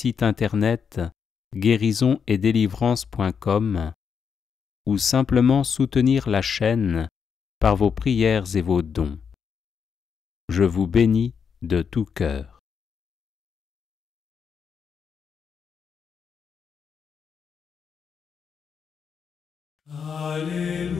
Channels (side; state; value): right; quieter; 6.6 dB